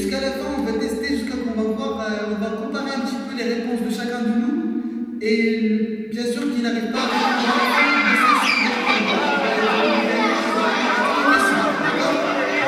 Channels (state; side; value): identical; both; correlation 1.00